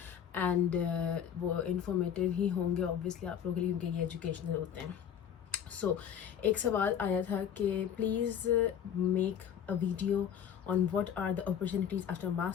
एंड वो इन्फॉर्मेटिव ही होंगे ऑब्वियसली आप लोगों के लिए क्योंकि ये एजुकेशनल होते हैं. सो एक सवाल आया था कि please make a video on what are the opportunities after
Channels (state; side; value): quieter; right; 8.8 dB